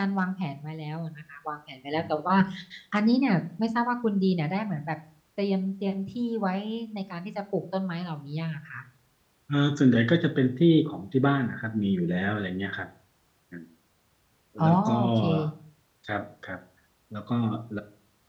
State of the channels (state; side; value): identical; both; correlation 1.00